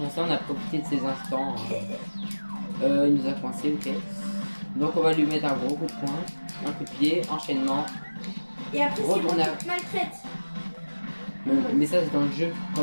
On a profité de ces instants. Il nous a coincé, ok. Donc on va lui mettre un gros coup de poing, un coup de pied, enchaînement. Et après, c'est bon, tu te maltraites. Mais ça, c'est dans le jeu.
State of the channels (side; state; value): both; inverted; correlation -1.00